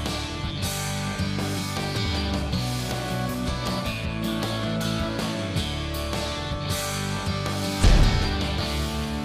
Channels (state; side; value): identical; both; correlation 1.00